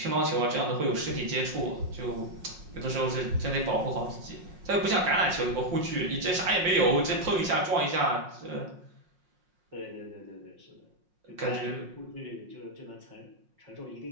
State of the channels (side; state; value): left; late; 5.7 ms